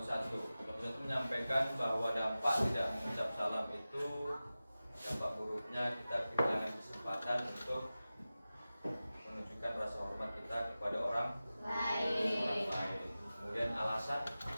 1. Kelompok 1 menyampaikan bahwa dampak tidak mengucap salam itu, dampak buruknya kita kehilangan kesempatan untuk menunjukkan rasa hormat kita kepada orang lain. Kemudian alasan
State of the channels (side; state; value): both; inverted; correlation -0.96